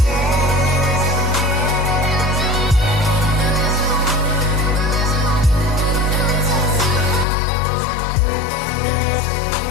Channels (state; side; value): drops out; right; at 7.2 s